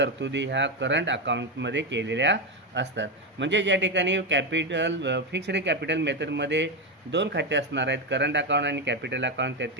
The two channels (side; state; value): both; normal; correlation 0.11